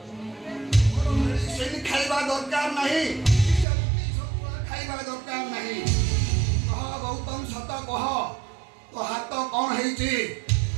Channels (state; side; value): drops out; left; at 3.7 s